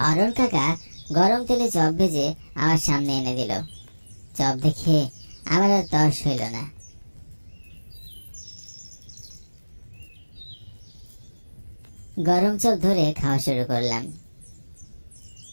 কাকা গরম তেলে চপ ভেজে আমার সামনে এনে দিল। চপ দেখে আমার আর তর্স হইল না। গরম চপ ধরে খাওয়া শুরু করলাম।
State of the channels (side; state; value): both; inverted; correlation -1.00